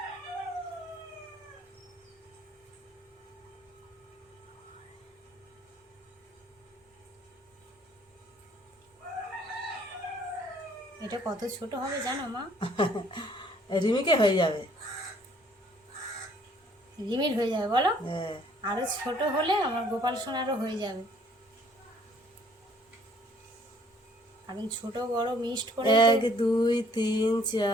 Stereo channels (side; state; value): both; normal; correlation 0.60